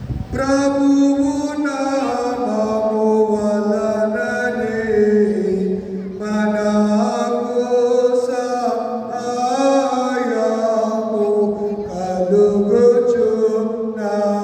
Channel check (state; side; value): identical; both; correlation 1.00